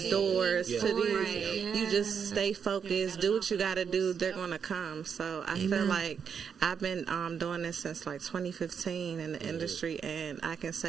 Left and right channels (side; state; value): left; quieter; 6.9 dB